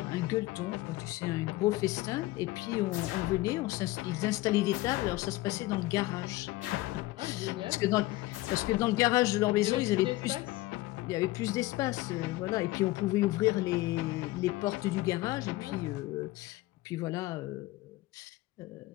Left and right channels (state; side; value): quieter; right; 18.6 dB